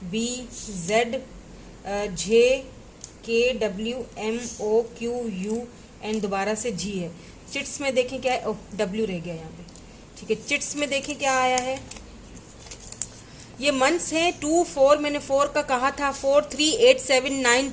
B Z J K W M O Q U and दोबारा से जी है। चिट्स में देखें क्या है, ओह डब्ल्यू रह गया यहाँ पे, ठीक है। चिट्स में देखें क्या आया है, ये मंथ्स हैं 2 4, मैंने 4 का कहा था, 4 3 8 7 9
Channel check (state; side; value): identical; both; correlation 1.00